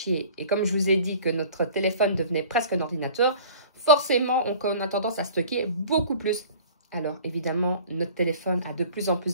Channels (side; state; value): both; inverted; correlation -0.45